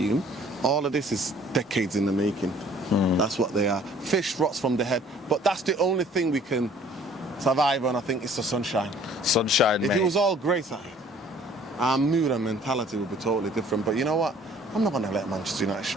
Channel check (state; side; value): normal; both; correlation 0.55